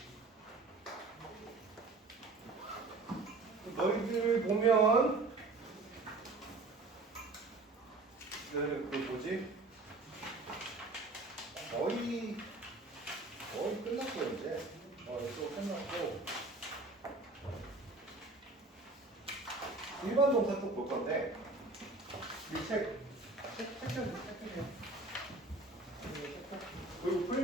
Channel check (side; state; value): left; quieter; 3.2 dB